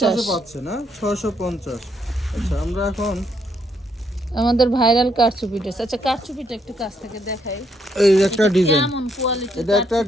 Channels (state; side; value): normal; both; correlation 0.74